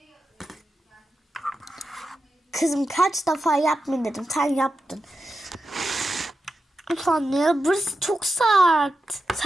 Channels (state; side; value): normal; both; correlation 0.90